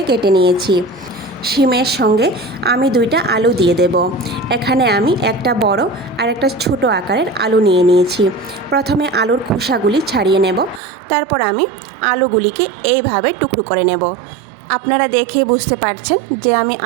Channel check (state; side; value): drops out; left; at 10.8 s